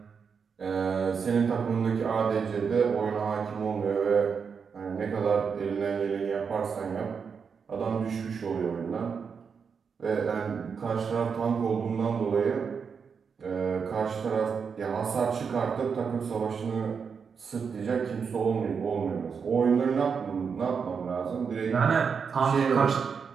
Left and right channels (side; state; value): left; quieter; 6.1 dB